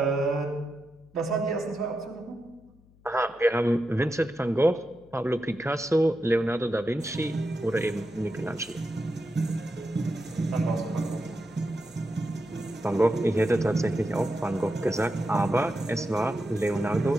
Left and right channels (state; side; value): noise; left; hum, 28 dB below the sound